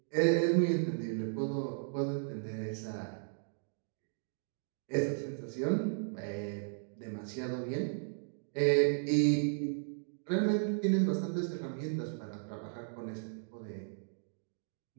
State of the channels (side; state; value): left; silent; digital silence